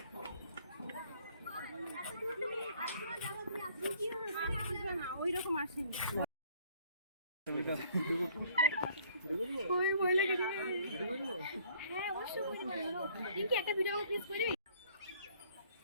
হ্যাঁ অবশ্যই রিঙ্কি একটা ভিডিও প্লিজ করবি।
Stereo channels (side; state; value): both; inverted; correlation -0.59